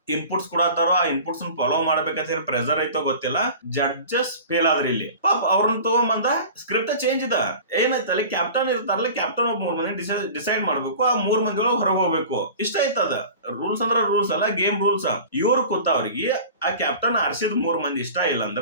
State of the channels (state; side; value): inverted; both; correlation -0.39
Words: ಇನ್ಪುಟ್ಸ್ ಕೊಡತ್ತಾರೋ ಆ ಇನ್ಪುಟ್ಸ್ ಫಾಲೋ ಮಾಡ್ಬೇಕಂತ ಹೇಳಿ ಪ್ರೆಸರ್ ಐತೋ ಗೊತ್ತಿಲ್ಲ. ಜಡ್ಜಸ್ ಫೇಲ್ ಆದ್ರಿ ಇಲ್ಲಿ. ಪಾಪ ಅವ್ರನ್ನ ತಗೊಂಬಂದ ಸ್ಕ್ರಿಪ್ಟ್ ಚೇಂಜ್ ಇದ ಏನಾಯ್ತು ಅಲ್ಲಿ ಕ್ಯಾಪ್ಟನ್ ಇರ್ತಾರಲ್ಲ, ಕ್ಯಾಪ್ಟನ್ ಒಬ್ಬ 3 ಮಂದಿ ಡಿಸೈಡ್ ಮಾಡ್ಬೇಕು, ಆ 3 ಮಂದಿ ಒಳಗೆ ಹೊರಗೆ ಹೋಗ್ಬೇಕು. ಇಷ್ಟ ಆಯ್ತದ. ರೂಲ್ಸ್ ಅಂದ್ರ ರೂಲ್ಸ್ ಅಲ್ಲ, ಗೇಮ್ ರೂಲ್ಸ್. ಇವ್ರು ಕೂತ ಅವ್ರಿಗೆ ಆ ಕ್ಯಾಪ್ಟನ್ ಆರ್ಸಿದ್ 3 ಮಂದಿ ಇಷ್ಟ ಇಲ್ಲ